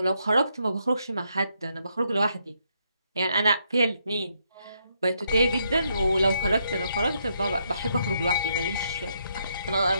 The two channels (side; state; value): both; inverted; correlation -0.76